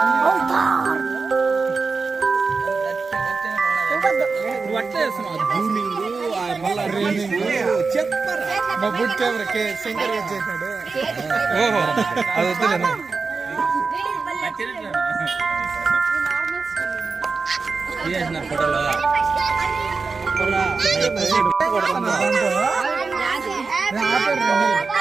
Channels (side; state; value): left; quieter; 4.5 dB